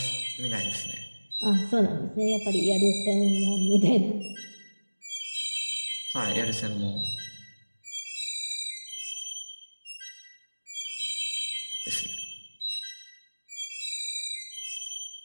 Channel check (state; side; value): inverted; both; correlation -1.00